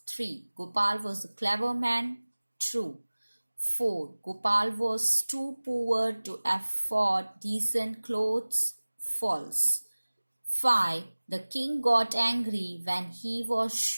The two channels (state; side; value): inverted; both; correlation -1.00